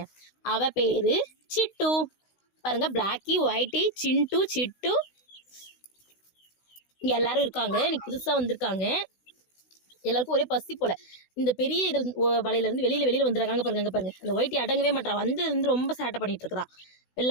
அவ பேரு சிட்டு. பாருங்க, பிளாக்கி, ஒயிட்டி, சிண்டு, சிட்டு. இங்கே எல்லாரும் இருக்காங்க, இன்னைக்கு புதுசாக வந்திருக்காங்க. எல்லாருக்கும் ஒரே பசி போல. இந்த பெரிய இதில் வலையிலேருந்து வெளியில் வந்துடுறாங்க பாருங்க. அங்கே பாருங்க, அந்த ஒயிட்டி அடங்கவே மாட்டா, வந்ததுலேருந்து ரொம்ப சேட்டை பண்ணிட்டு இருக்கிறா.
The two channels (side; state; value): right; late; 16 ms